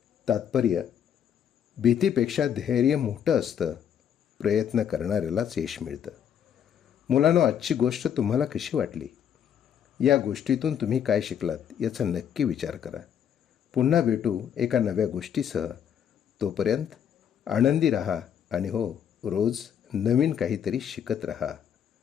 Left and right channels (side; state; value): right; quieter; 8.8 dB